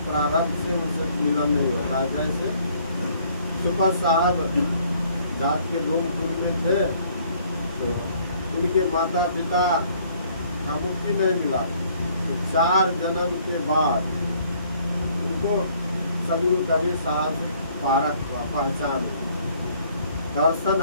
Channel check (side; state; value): both; inverted; correlation -0.62